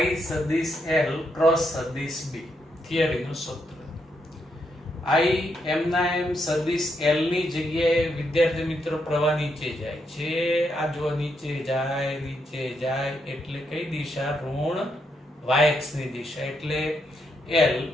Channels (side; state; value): both; normal; correlation 0.79